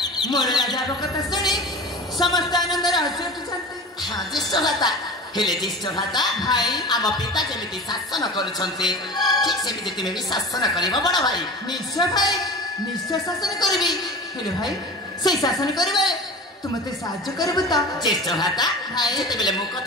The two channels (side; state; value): both; normal; correlation 0.34